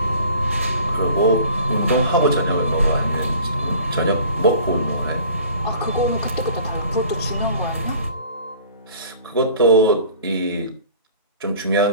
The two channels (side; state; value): both; inverted; correlation -0.47